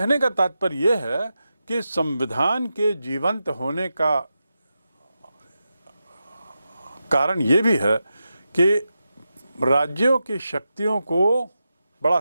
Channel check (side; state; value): both; inverted; correlation -0.90